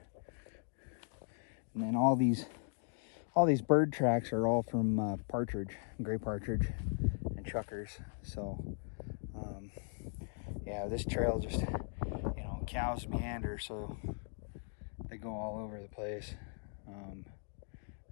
and then all these bird tracks are all from partridge, gray partridge, and chuckers. So yeah, this trail just, cows meander, so they go all over the place.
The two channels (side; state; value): right; silent; 52 dB below the other